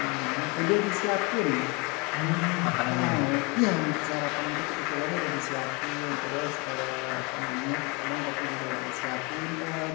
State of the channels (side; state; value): right; quieter; 28.8 dB